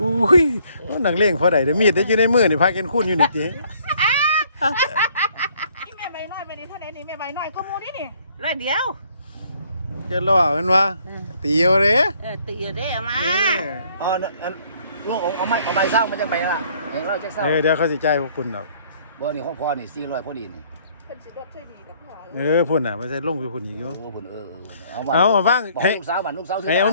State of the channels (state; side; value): inverted; both; correlation -0.62